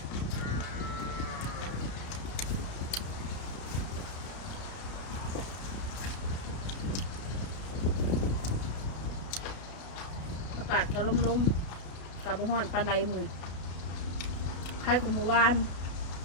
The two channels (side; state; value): right; late; 32 ms